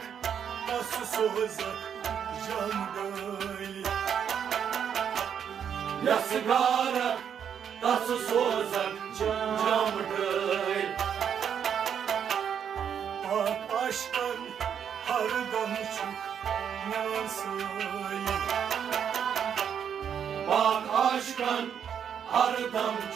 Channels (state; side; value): quieter; left; 8.2 dB